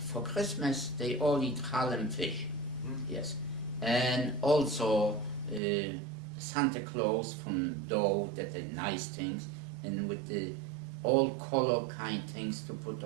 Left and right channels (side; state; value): left; drops out; at 5.6 s